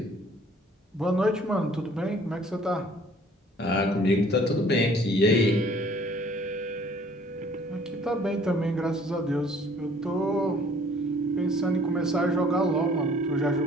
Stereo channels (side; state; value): both; normal; correlation 0.56